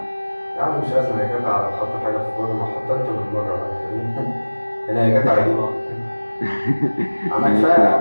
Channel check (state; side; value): inverted; both; correlation -1.00